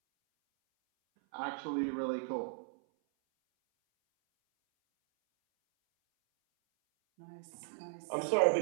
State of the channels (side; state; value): left; silent; 54 dB below the other